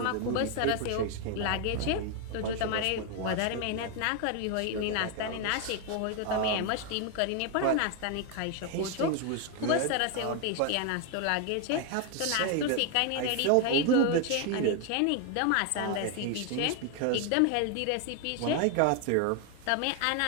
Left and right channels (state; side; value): different; both; correlation 0.01